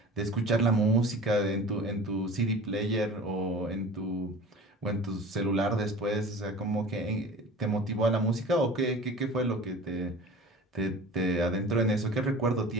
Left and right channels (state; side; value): normal; both; correlation 0.40